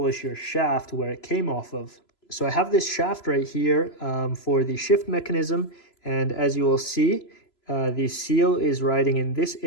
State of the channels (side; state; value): right; late; 3.0 ms